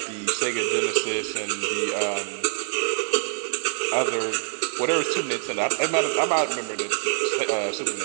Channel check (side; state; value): left; silent; 62 dB below the other